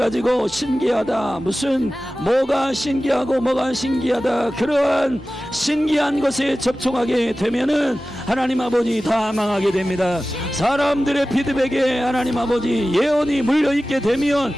신기하다 무슨 뭐가 신기하고 뭐가 신기하다 그러한 신기한 것에 접촉하게 되면은 하나님 아버지 다 망하게 됩니다. 사람들의 피드백에 하나님 아버지 예언이 물려있게 되면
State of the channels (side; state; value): both; normal; correlation 0.96